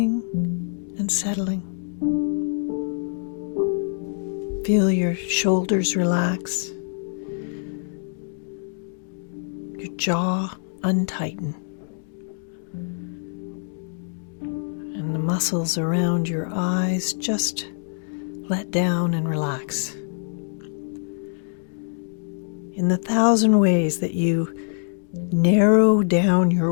and settling. Feel your shoulders relax, your jaw untighten, and the muscles around your eyes just let down and relax. In the 1,000 ways that you narrow down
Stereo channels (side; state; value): right; silent; digital silence